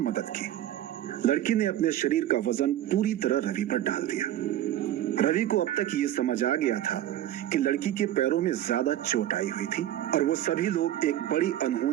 की। लड़की ने अपने शरीर का वजन पूरी तरह रवि पर डाल दिया। रवि को अब तक ये समझ आ गया था कि लड़की के पैरों में ज्यादा चोट आई हुई थी और वो सभी लोग एक बड़ी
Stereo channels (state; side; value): quieter; left; 12.6 dB